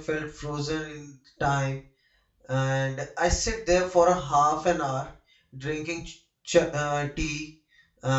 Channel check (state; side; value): identical; both; correlation 1.00